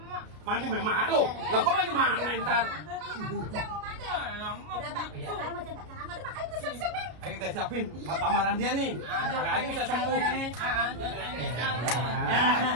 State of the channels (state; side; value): late; left; 33 ms